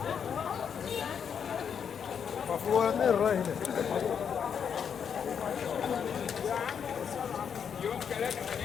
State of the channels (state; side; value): quieter; right; 7.4 dB